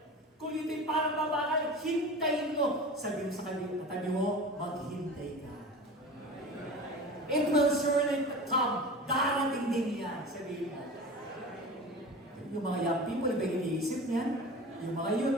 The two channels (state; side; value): normal; both; correlation 0.34